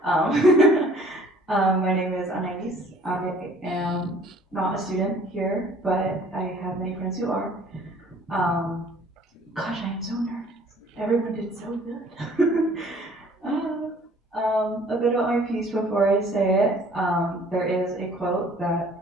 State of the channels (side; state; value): both; normal; correlation 0.55